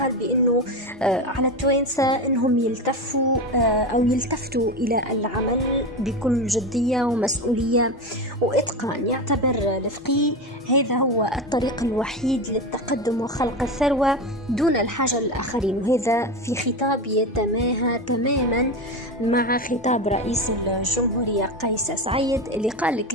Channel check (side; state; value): both; normal; correlation 0.20